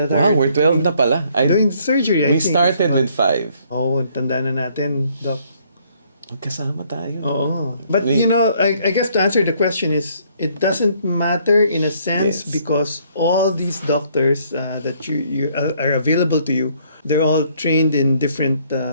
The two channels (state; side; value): inverted; both; correlation -0.65